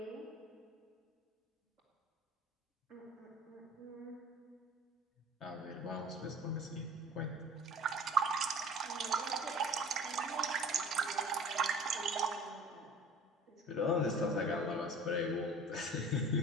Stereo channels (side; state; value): both; normal; correlation 0.44